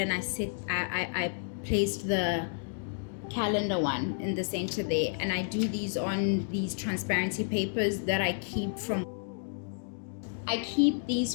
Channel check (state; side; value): silent; right; digital silence